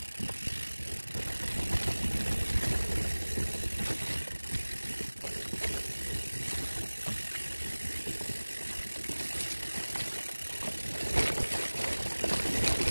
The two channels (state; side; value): inverted; both; correlation -1.00